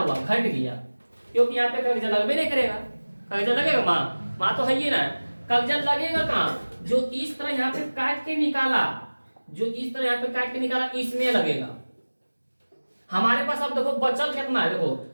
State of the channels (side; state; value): both; inverted; correlation -1.00